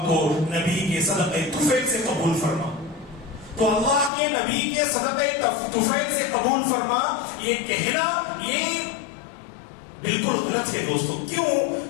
کو نبی کے صدقہ طفیل سے قبول فرما. تو اللہ کے نبی کے صدقہ طفیل سے قبول فرما، یہ کہنا یہ بالکل غلط ہے دوستو. کیوں؟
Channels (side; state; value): right; drops out; at 4.1 s